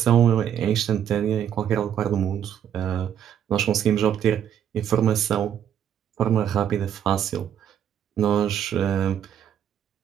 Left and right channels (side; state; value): left; quieter; 9.4 dB